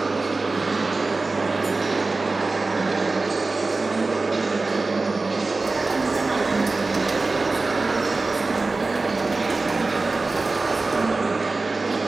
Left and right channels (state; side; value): quieter; left; 3.5 dB